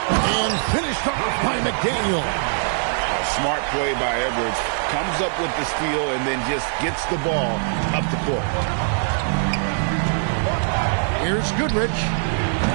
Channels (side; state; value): left; silent; 64 dB below the other